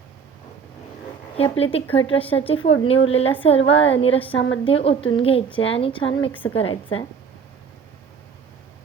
ही आपली तिखट रश्श्याची फोडणी उरलेल्या सर्व अळणी रश्श्यामध्ये ओतून घ्यायची आहे आणि छान मिक्स करायचं आहे.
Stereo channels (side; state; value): left; quieter; 6.3 dB